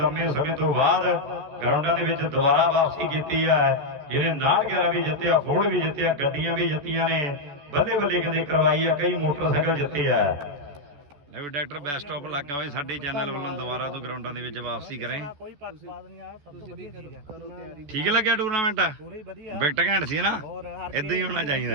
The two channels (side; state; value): left; late; 14 ms